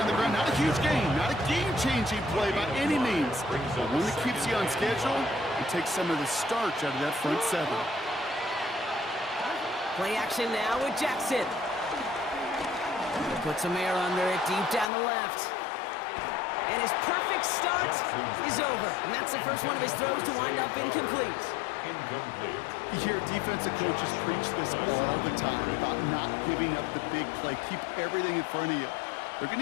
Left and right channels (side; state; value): right; drops out; at 14.9 s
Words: on the ground. Not a huge gain, not a game-changing play by any means. But one that keeps you on schedule and takes some of the starch out of that front seven. Play action now with Jackson. Put some air under it, deep down the left. And his perfect start is over. And that's the first one of his throws to wind up incomplete. You hear defensive coaches preach this all the time about not giving up the big play. Keep everything in front of you. They're going